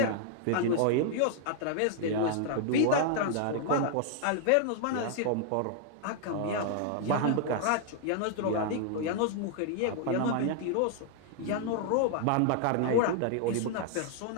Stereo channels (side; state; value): both; different; correlation 0.00